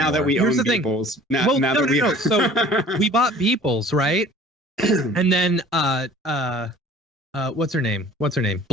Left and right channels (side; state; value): both; normal; correlation 0.48